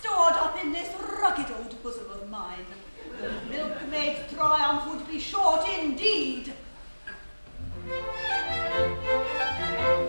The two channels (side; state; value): both; inverted; correlation -1.00